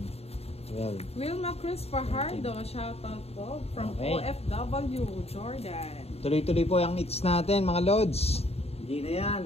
12. Wilma Cruz Fajardo, shoutout po from OFW, Jordan. Tuloy-tuloy po yung hits natin, mga lods. Hindi na yan.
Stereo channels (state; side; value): late; right; 0.30 ms